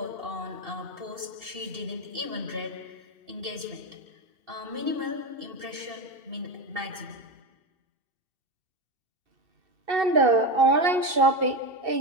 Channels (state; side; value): late; left; 2.7 ms